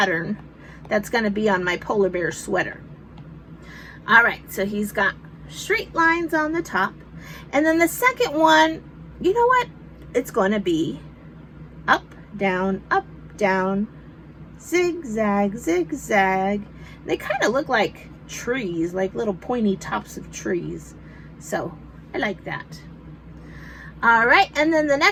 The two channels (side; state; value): both; identical; correlation 1.00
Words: that's going to be on my polar bear sweater. All right, so he's got straight lines on the top. And then the second one, you know what? It's going to be up, down, zigzag, zigzag. They kind of look like trees, like little pointy tops of trees. So I like that. All right, and then the